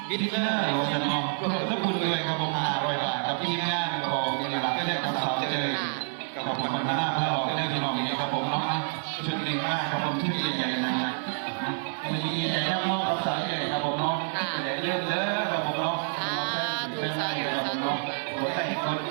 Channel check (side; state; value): left; silent; digital silence